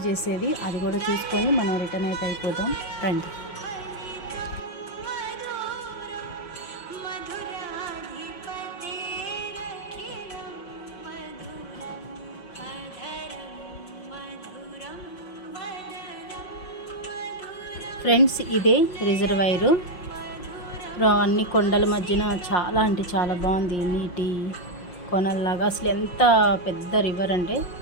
చేసేది. అది కూడా చూసుకొని మనం రిటర్న్ అయితే అయిపోతాం రండి. ఫ్రెండ్స్ ఇదే రిజర్వాయరు. అన్ని కొండల మధ్యన చాలా అంటే చాలా బాగుంది. నీటి కొనల్లాగా అసలు ఎంత పెద్ద రివర్ అంటే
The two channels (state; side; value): late; right; 5.6 ms